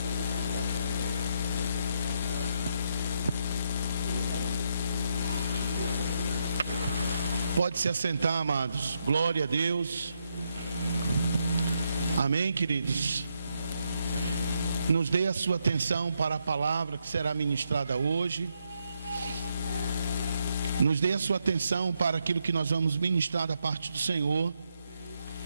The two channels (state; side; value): inverted; both; correlation -0.78